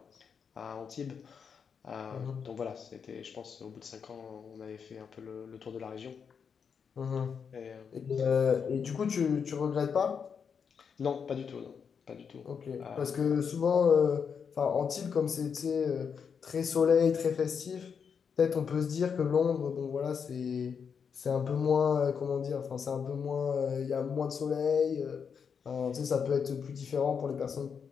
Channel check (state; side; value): quieter; right; 6.6 dB